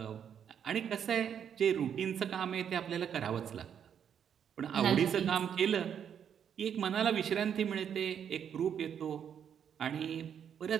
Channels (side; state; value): left; quieter; 8.4 dB